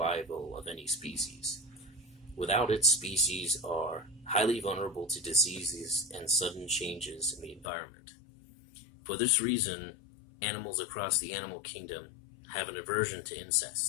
of any species. Without it, species are highly vulnerable to diseases and sudden changes in the environment. For this reason, animals across the animal kingdom have an aversion to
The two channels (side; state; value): right; drops out; at 7.7 s